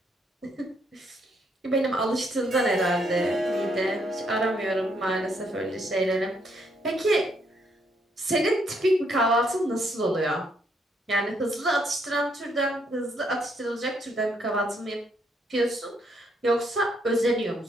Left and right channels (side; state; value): both; normal; correlation 0.72